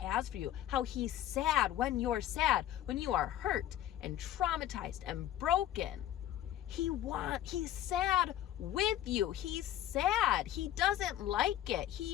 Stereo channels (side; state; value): right; quieter; 12.3 dB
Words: for you. How he's sad when you're sad, when you are hurt and traumatized and broken. He's sad with you. He's sad. He doesn't like